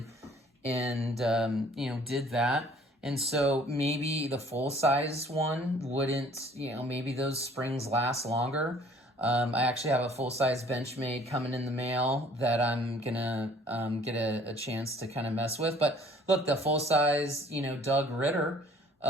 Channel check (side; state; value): both; normal; correlation 0.55